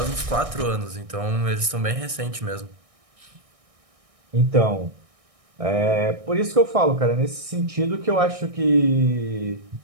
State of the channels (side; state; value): left; late; 1.6 ms